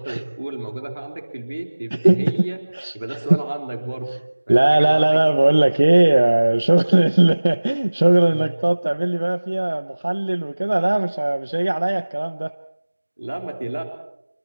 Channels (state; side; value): inverted; both; correlation -1.00